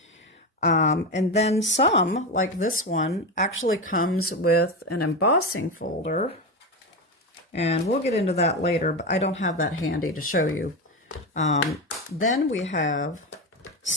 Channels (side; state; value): both; normal; correlation 0.17